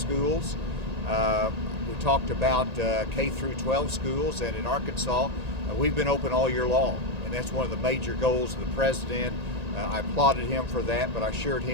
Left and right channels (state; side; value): late; left; 1.8 ms